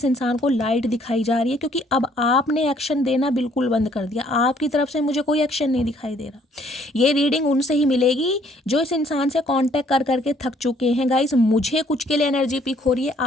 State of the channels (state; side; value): normal; both; correlation 0.63